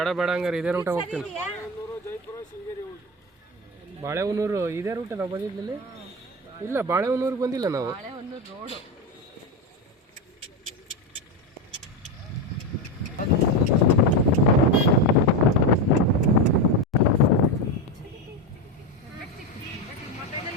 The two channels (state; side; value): normal; both; correlation 0.14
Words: ಬೇಡ ಹಂಗಾರೆ ಇದೇ ರೂಟ ಹೋಗ್ತೀನಿ. ಬಾಳೆಹೊನ್ನೂರು ಇದೇ ರೂಟ ನಾವು ಬಂದಿದ್ದಲ್ಲಿ? ಇಲ್ಲ, ಬಾಳೆಹೊನ್ನೂರಿಗೆ ಬಂದಿಲ್ಲ ನಾವು. ರೋಡು